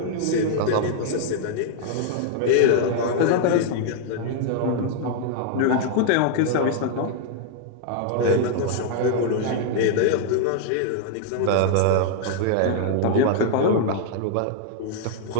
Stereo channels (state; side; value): different; both; correlation -0.01